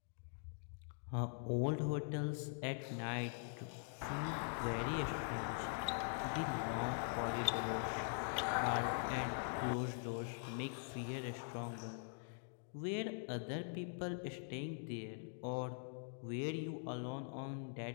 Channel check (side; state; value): right; silent; digital silence